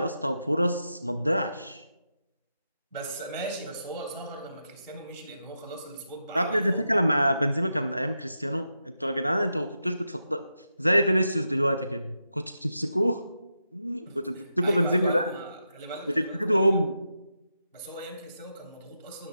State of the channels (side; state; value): both; inverted; correlation -0.87